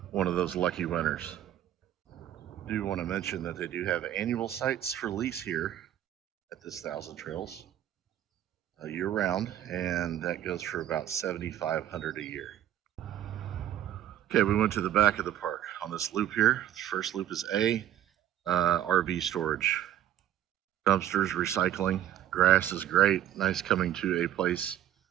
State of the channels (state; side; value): quieter; left; 11.7 dB